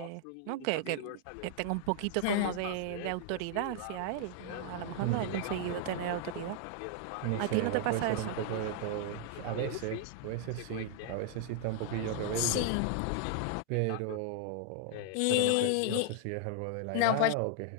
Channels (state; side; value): different; both; correlation 0.00